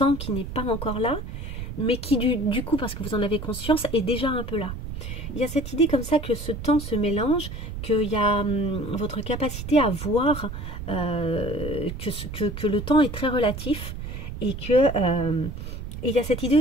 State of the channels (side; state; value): right; noise; rumble, 8 dB below the sound